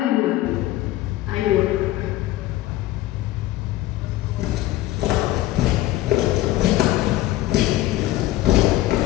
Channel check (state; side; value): quieter; right; 15.7 dB